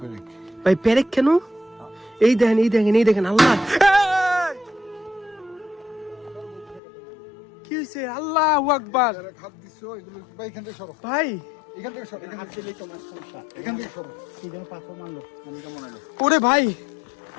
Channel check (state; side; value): drops out; right; at 6.8 s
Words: ভাই পেরেক কেন? এই দেখেন আল্লাহ কি হয়েছে? আল্লাহু আকবার। ভাই ওরে ভাই,